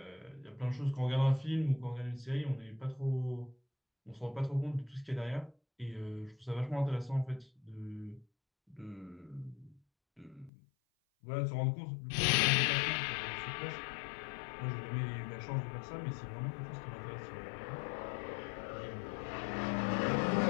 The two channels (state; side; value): drops out; right; at 10.5 s